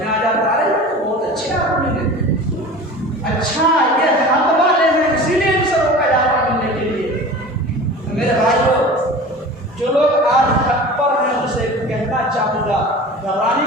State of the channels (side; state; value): both; normal; correlation 0.37